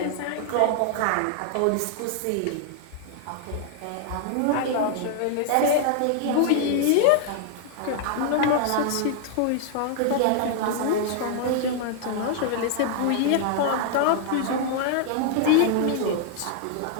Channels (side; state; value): both; different; correlation 0.00